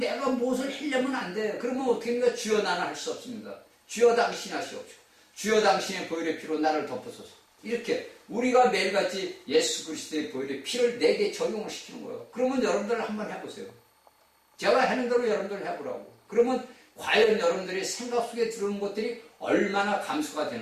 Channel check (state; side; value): identical; both; correlation 1.00